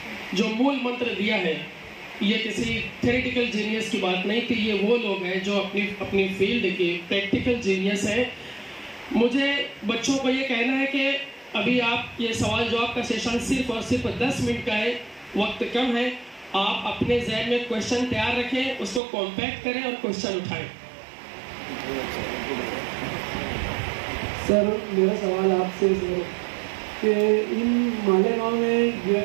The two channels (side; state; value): left; drops out; at 19.0 s